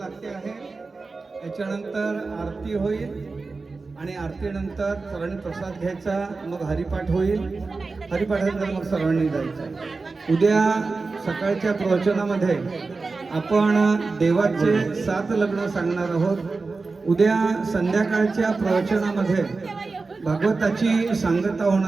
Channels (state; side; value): quieter; left; 4.0 dB